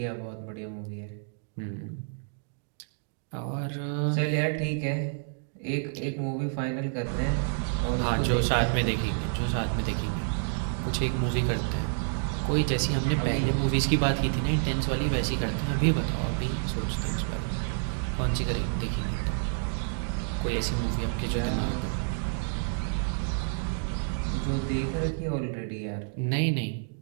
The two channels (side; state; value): left; silent; digital silence